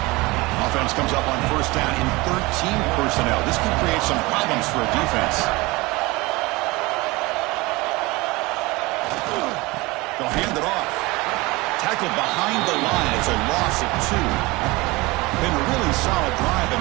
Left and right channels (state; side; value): quieter; left; 22.7 dB